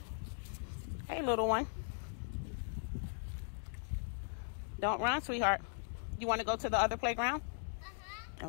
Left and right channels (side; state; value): right; silent; digital silence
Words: Hey, little one. Don't run, sweetheart. You want to go to the other playground?